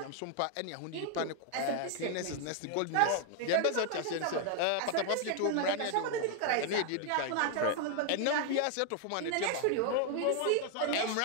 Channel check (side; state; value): both; different; correlation 0.00